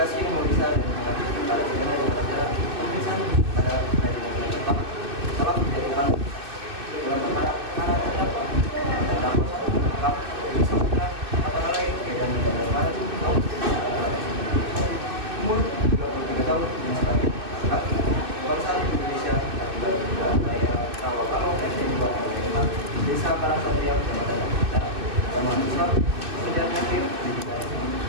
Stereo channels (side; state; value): left; late; 2.6 ms